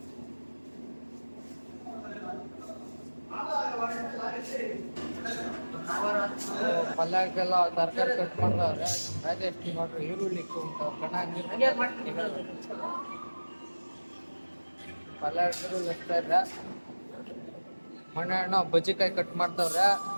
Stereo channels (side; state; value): both; inverted; correlation -1.00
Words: ಪಲ್ಯಕ್ಕೆಲ್ಲ ತರಕಾರಿ ಕಟ್ ಮಾಡಿದವ್ರೆ. ರಾಜೇಶ್ ನೋಡ್ರಿ ಈರುಳ್ಳಿ ಪಲ್ಯ ಈರುಳ್ಳಿ ಎಷ್ತಾ ಇದೆ. ಮಣ್ಣು ಬಜ್ಜಿಕಾಯಿ ಕಟ್ ಮಾಡ್ತವ್ರೆ,